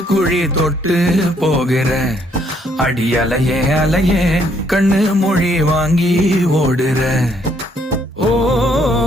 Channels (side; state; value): both; normal; correlation 0.69